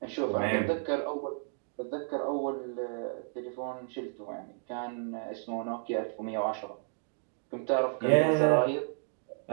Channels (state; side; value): silent; left; digital silence